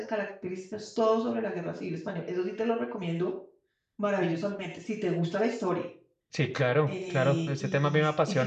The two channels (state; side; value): identical; both; correlation 1.00